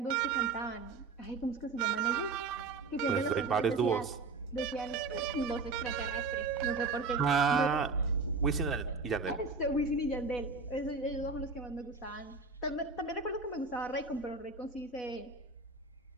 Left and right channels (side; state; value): left; quieter; 4.0 dB